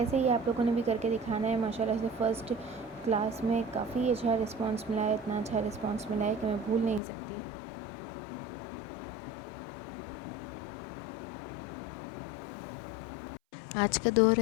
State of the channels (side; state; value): right; drops out; at 7.0 s